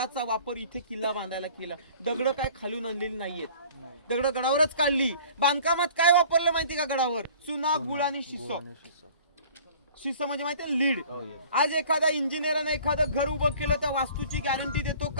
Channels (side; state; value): both; inverted; correlation -0.49